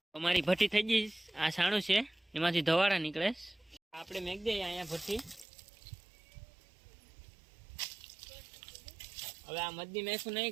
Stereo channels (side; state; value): left; drops out; at 5.5 s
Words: અમારી ભઠ્ઠી થઈ ગઈ. આ છાણું છે, એમાંથી ધવાડા નીકળે. આપણે મેક દઈએ અહીંયા ભઠ્ઠી. હવે આ મધની મેખું